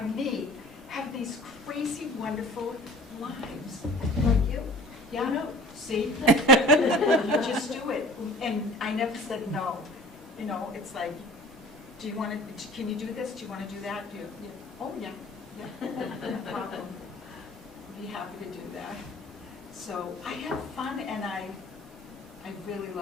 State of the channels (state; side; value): normal; both; correlation 0.44